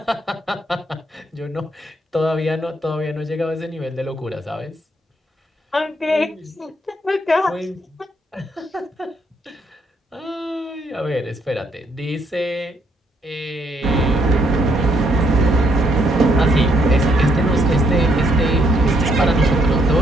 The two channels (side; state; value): both; normal; correlation 0.72